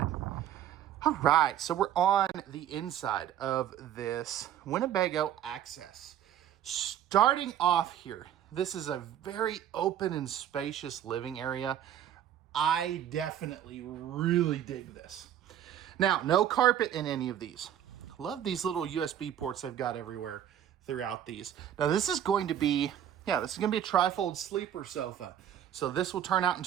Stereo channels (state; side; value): quieter; left; 10.4 dB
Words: All right, so we're on the inside of this Winnebago Access. Starting off here, this is a very open and spacious living area. I definitely really dig this. Now, no carpet in any of these. Love these little USB ports they've got everywhere throughout these. Now, this is going to be, this is going to be a trifold sleeper sofa. So this will turn out